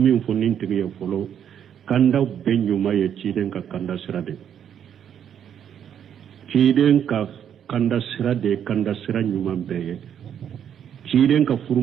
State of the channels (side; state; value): left; quieter; 9.0 dB